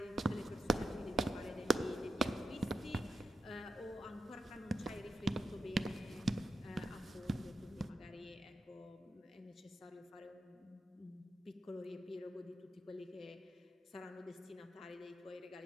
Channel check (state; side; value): normal; both; correlation 0.86